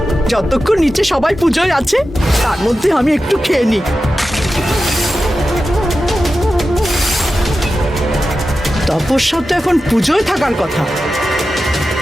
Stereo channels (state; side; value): normal; both; correlation 0.92